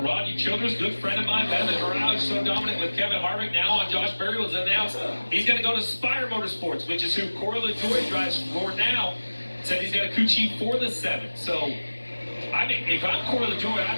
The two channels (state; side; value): inverted; both; correlation -1.00